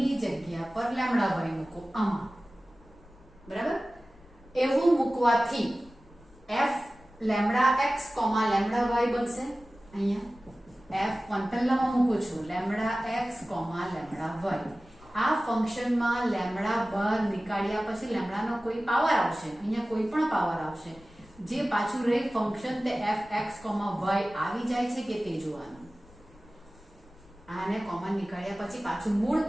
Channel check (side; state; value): left; noise; rumble, 25 dB below the sound